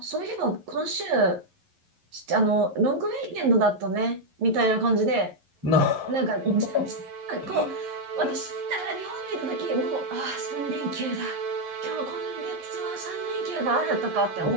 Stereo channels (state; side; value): late; left; 11 ms